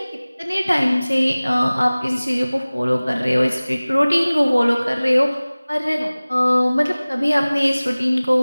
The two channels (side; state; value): both; inverted; correlation -0.99